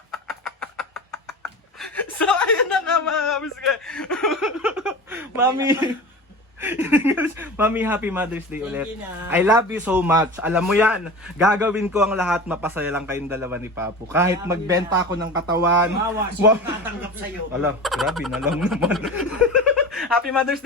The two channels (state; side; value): normal; both; correlation 0.32